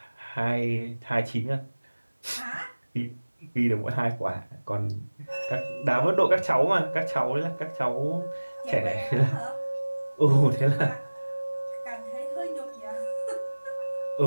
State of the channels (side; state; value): both; inverted; correlation -1.00